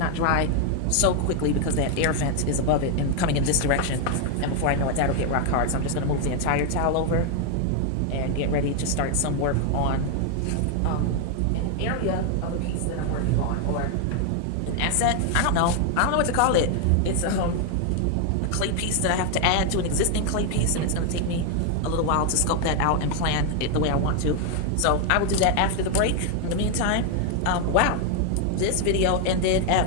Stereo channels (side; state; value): both; different; correlation 0.01